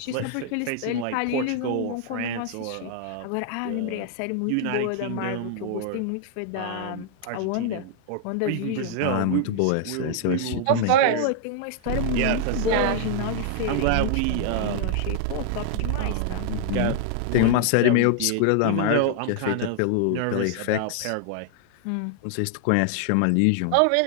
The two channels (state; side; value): different; both; correlation 0.00